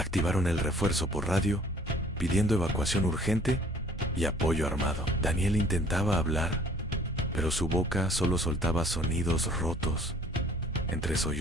el refuerzo por radio, pidiendo evacuación urgente y apoyo armado. Daniel intentaba hablar, pero su boca solo soltaba sonidos rotos, entre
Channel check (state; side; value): normal; both; correlation 0.55